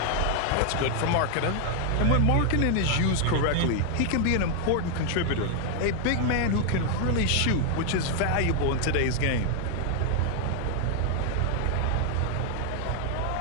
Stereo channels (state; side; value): different; both; correlation 0.00